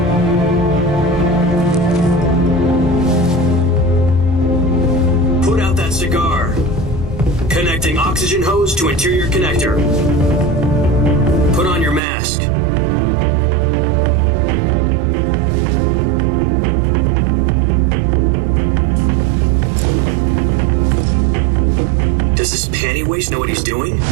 Cigar. Connecting oxygen hose to interior connector. Put on your mask. Does this panty waste know what he's doing?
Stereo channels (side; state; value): left; drops out; at 12.0 s